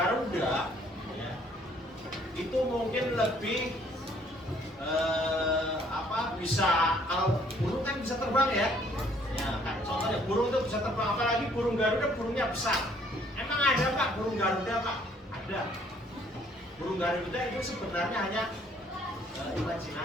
ya, itu mungkin lebih bisa, kalau burung kan bisa terbang ya. Ya, kan, contohnya burung itu bisa terbang, apalagi burung Garuda, burungnya besar. Emang ada Pak burung Garuda, Pak? Ada. Burung Garuda itu sebenarnya hanya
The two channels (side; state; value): both; normal; correlation 0.62